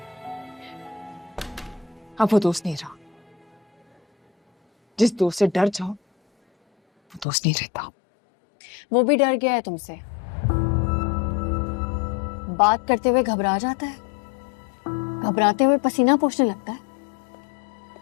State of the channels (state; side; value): drops out; right; at 7.2 s